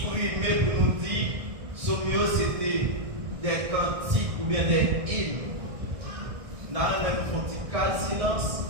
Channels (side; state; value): left; late; 1.6 ms